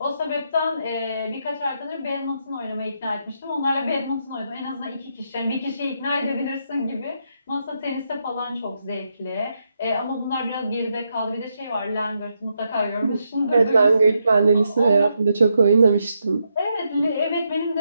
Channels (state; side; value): inverted; both; correlation -0.80